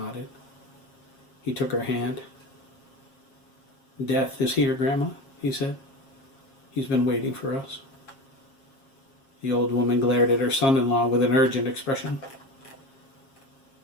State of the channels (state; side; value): late; right; 7.4 ms